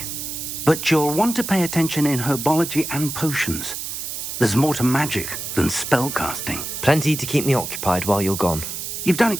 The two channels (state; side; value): noise; right; hiss, 6 dB below the sound